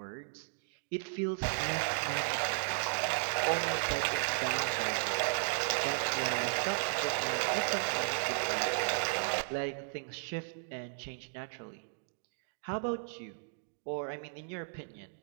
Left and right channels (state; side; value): silent; left; digital silence